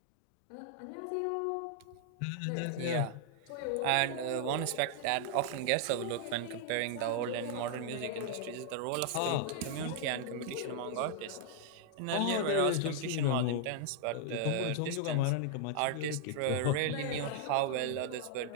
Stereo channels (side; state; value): both; different; correlation -0.01